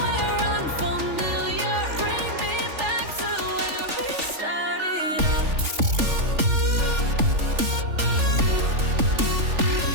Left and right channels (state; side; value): late; left; 3.4 ms